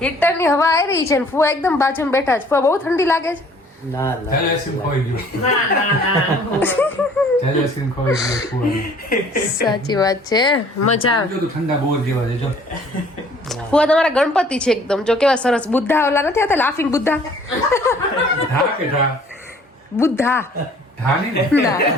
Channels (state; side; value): normal; both; correlation 0.55